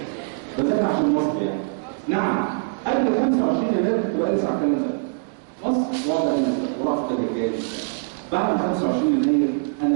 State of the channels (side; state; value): left; silent; digital silence